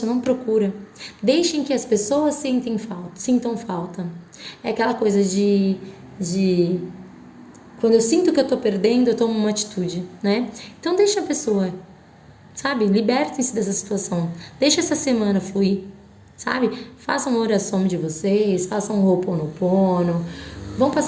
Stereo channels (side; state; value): both; identical; correlation 1.00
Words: não procura. Deixem que as pessoas sintam falta. É aquela coisa de quando eu sinto que eu tô perdendo, eu tomo uma atitude, né? Então deixa a pessoa, sabe? Libertem-se dessa situação. Deixa essa semana fluir, sabe? Façam uma oração de vocês, façam um Ho'oponopono, vão